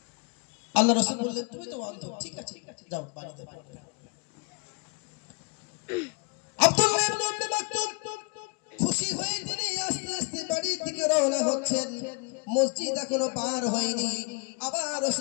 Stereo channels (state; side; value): quieter; right; 33.5 dB